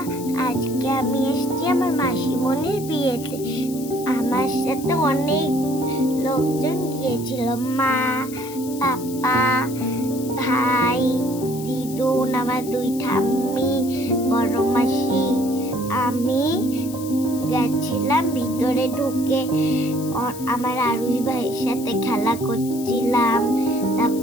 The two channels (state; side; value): noise; left; hiss, 15 dB below the sound